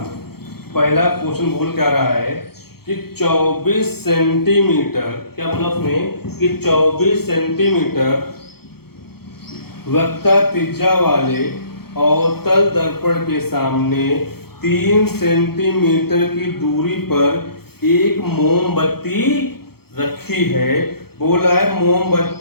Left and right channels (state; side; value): late; right; 0.95 ms